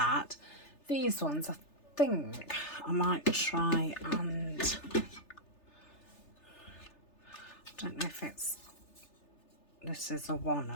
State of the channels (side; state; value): right; late; 3.3 ms